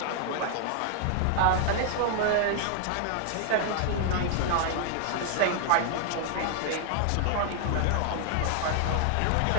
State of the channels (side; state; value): both; different; correlation 0.00